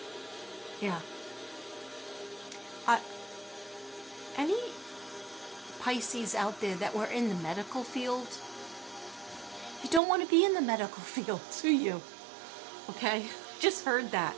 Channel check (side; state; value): left; drops out; at 10.0 s